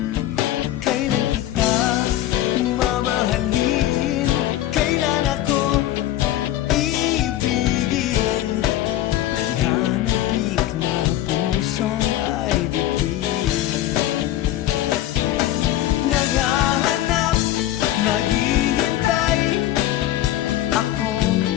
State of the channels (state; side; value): quieter; right; 13.6 dB